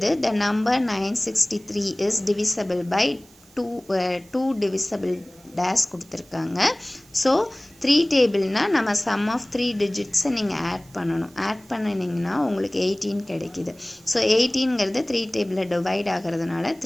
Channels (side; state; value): right; noise; hiss, 27 dB below the sound